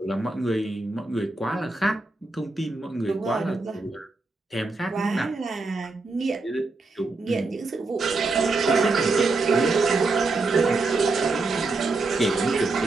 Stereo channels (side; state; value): left; quieter; 3.5 dB